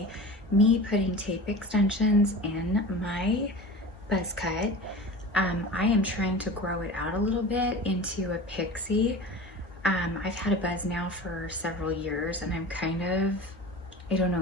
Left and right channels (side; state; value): both; normal; correlation 0.34